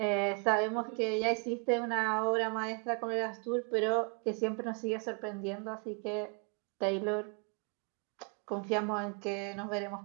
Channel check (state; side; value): quieter; left; 35.8 dB